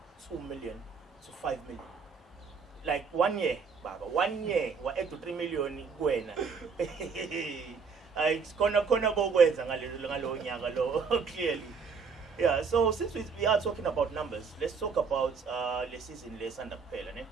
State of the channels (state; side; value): quieter; left; 5.4 dB